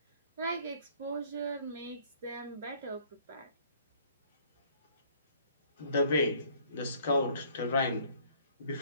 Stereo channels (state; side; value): inverted; both; correlation -0.58